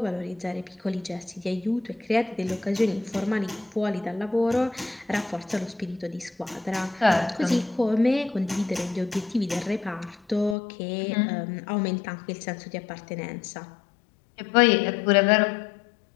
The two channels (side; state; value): right; drops out; at 10.6 s